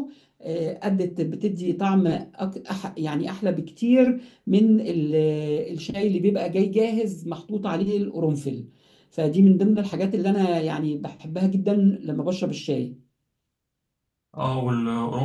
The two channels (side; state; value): both; identical; correlation 1.00